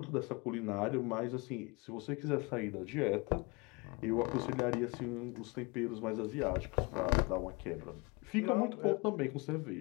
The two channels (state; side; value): quieter; right; 27.5 dB